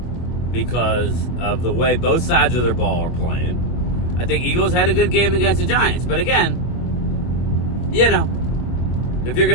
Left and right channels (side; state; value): right; late; 25 ms